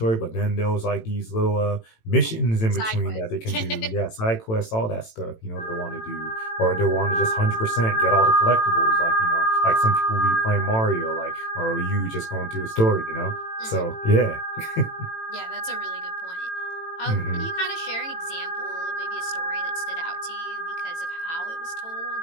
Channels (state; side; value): late; right; 18 ms